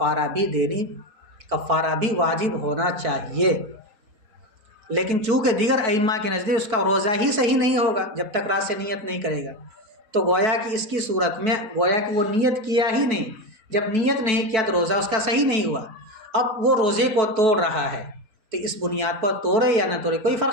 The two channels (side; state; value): left; late; 4.5 ms